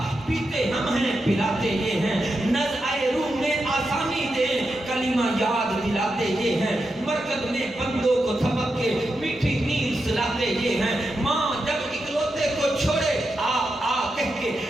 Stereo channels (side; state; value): both; normal; correlation 0.87